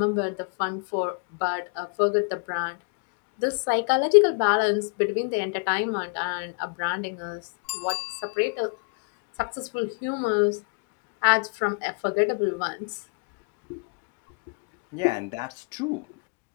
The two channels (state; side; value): quieter; right; 36.3 dB